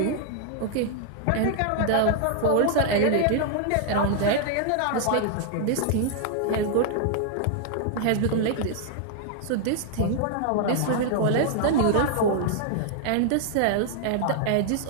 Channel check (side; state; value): both; different; correlation -0.01